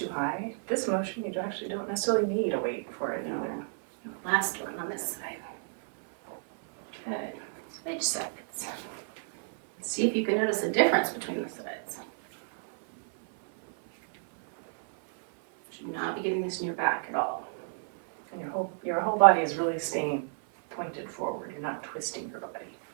high. This motion, you actually don't necessarily need a weight for it. No. Last one on this side. Good. Switch sides. See if you can notice the difference between the sides. Should not be getting this in your back at all. And your whole body is really staying pointed forward. You're not twisting your body.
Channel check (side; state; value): left; silent; 57 dB below the other